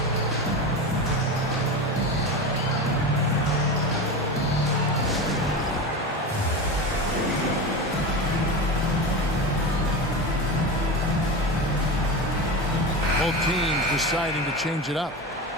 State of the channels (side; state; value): both; normal; correlation 0.24